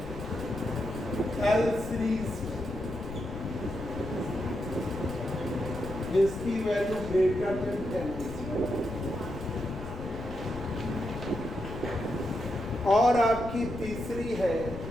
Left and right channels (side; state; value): left; noise; rumble, 10 dB below the sound